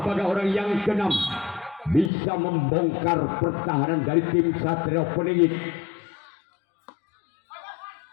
Apakah orang yang keenam bisa membongkar pertahanan dari tim Satrio Peningit?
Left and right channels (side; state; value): right; drops out; at 2.1 s